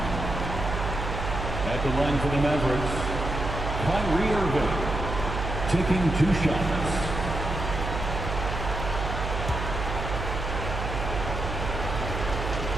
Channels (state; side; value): noise; right; hum, 4 dB below the sound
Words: At the line for the Mavericks, Kyrie Irving taking 2 shots.